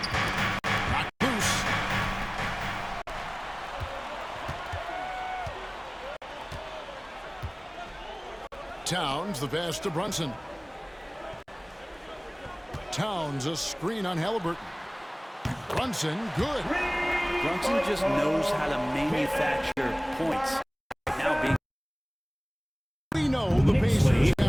Knocked loose. Towns the pass to Brunson. Towns a screen on Haliburton. Brunson good. Brunson just knows how to manufacture points. Now being We know the Pacers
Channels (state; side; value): identical; both; correlation 1.00